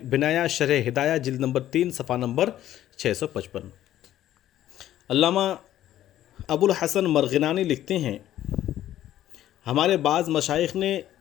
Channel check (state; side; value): quieter; right; 12.7 dB